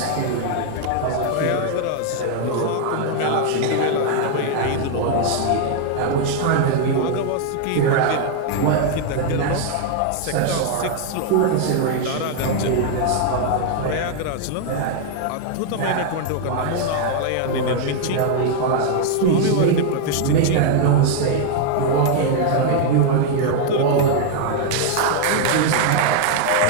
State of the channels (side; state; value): both; different; correlation 0.00